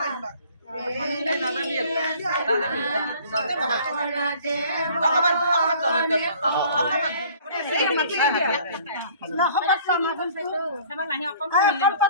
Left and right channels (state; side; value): inverted; both; correlation -0.52